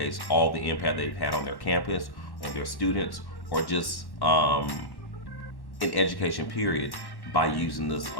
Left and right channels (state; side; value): late; right; 1.1 ms